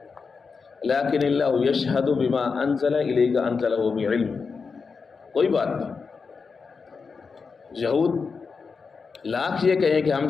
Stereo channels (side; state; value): right; quieter; 5.1 dB